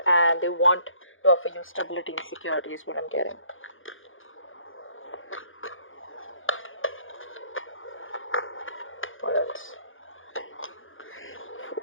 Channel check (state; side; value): late; right; 0.58 ms